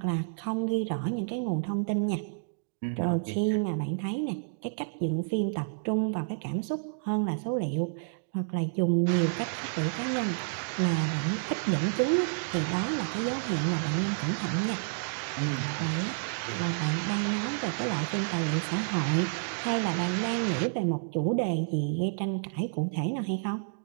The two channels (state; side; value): silent; left; digital silence